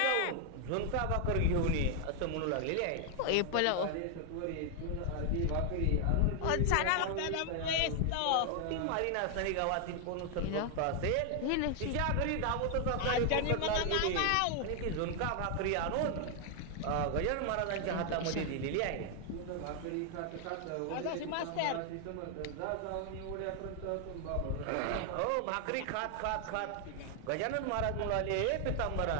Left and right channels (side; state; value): both; different; correlation 0.00